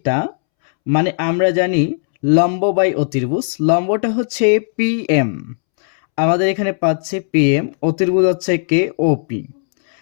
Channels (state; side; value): silent; right; 69 dB below the other